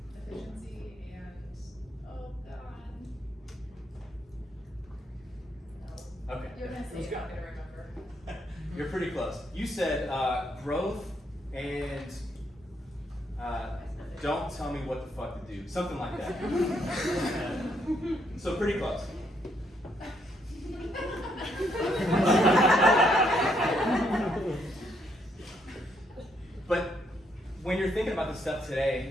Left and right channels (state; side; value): normal; both; correlation 0.73